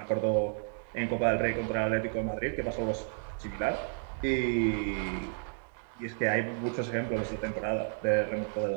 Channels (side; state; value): left; silent; digital silence